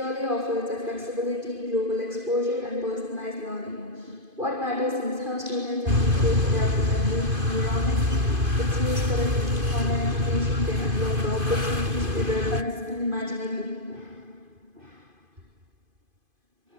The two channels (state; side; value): late; left; 2.5 ms